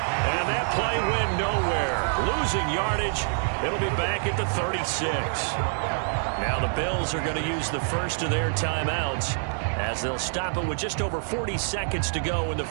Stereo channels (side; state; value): left; silent; 61 dB below the other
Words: that play went nowhere. Losing yardage. It'll be back at the 36. Now the Bills are going to use the first of their timeouts as they'll stop it with just over 40 seconds to go in the